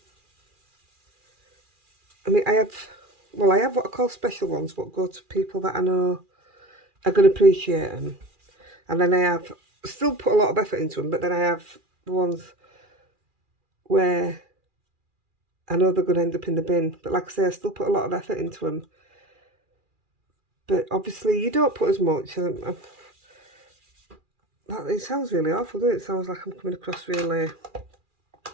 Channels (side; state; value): left; late; 2.4 ms